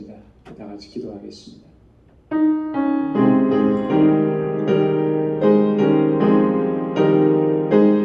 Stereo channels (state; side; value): identical; both; correlation 1.00